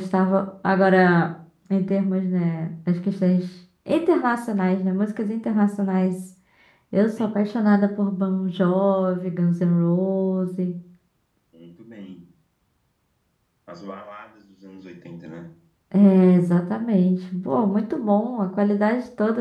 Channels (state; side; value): identical; both; correlation 1.00